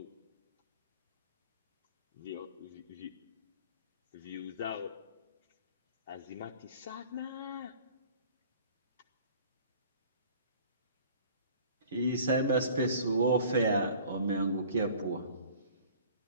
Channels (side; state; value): both; inverted; correlation -0.49